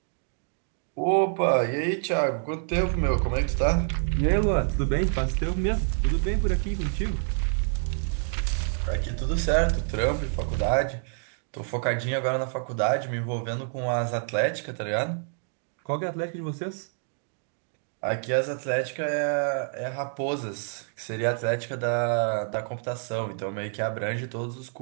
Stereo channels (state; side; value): silent; left; digital silence